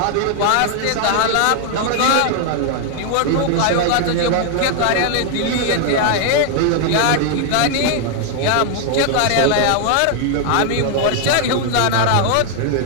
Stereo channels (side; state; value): both; different; correlation 0.00